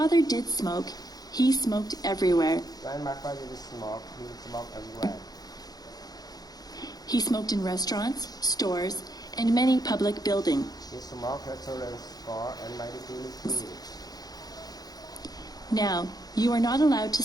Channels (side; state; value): right; late; 0.19 ms